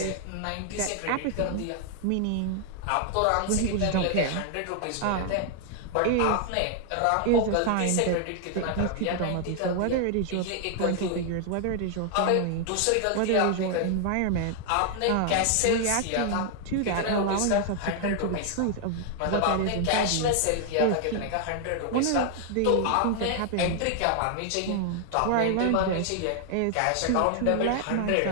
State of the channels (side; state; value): both; different; correlation 0.00